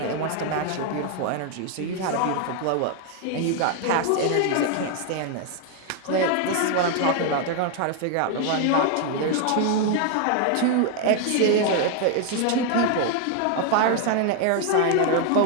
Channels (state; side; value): different; both; correlation 0.01